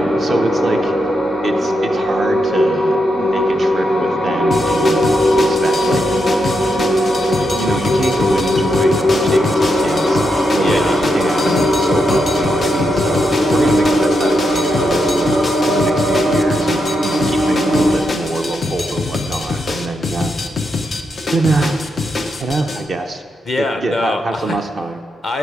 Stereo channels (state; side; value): normal; both; correlation 0.84